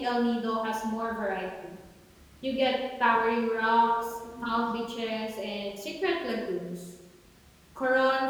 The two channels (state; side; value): identical; both; correlation 1.00